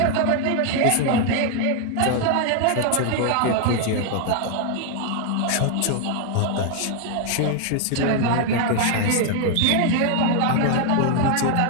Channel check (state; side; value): different; both; correlation 0.00